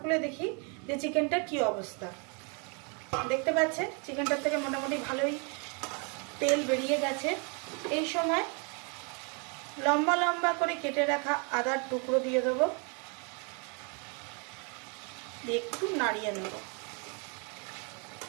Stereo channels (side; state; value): left; quieter; 35.4 dB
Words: খুলে দেখি যে চিকেনটার কি অবস্থা। দেখতে পাচ্ছেন চিকেনটার থেকে মোটামুটি ভালোই তেল বেরিয়ে গেছে। এই সময় লম্বা লম্বা করে কেটে রাখা আদার টুকরো দিয়ে দেবো, দিয়ে একটু নাড়িয়ে নেব।